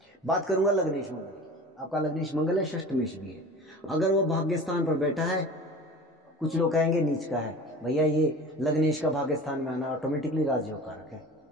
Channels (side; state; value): both; normal; correlation 0.38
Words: बात करूंगा लग्नेश मंगल की। आपका लग्नेश मंगल है, षष्ठमेश भी है। अगर वो भाग्य स्थान पर बैठा है, कुछ लोग कहेंगे नीच का है, भैया ये लग्नेश का भाग्य स्थान में आना ऑटोमेटिकली राजयोग कारक है,